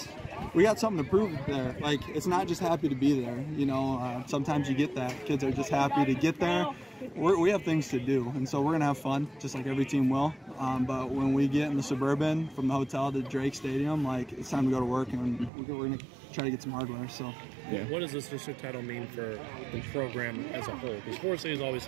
we got something to prove there. Like, it's not just happy to be there. Sometimes you get that. Kids are just happy to get there. We have things to do, and so we're going to have fun, just like every team will. But when we get in the Suburban from the hotel to Drake Stadium, like, it's time to go to work, and we're going to try to get some hardware. So, yeah. What does this district title mean for the program as a whole? Because Forest City's always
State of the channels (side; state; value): left; drops out; at 15.5 s